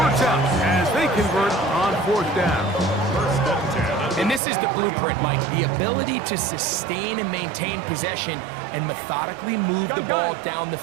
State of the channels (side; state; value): left; drops out; at 4.4 s